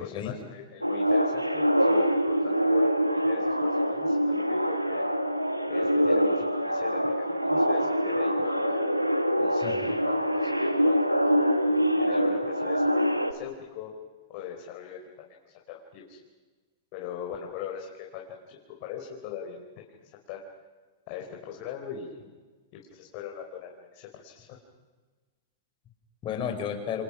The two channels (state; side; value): inverted; both; correlation -0.86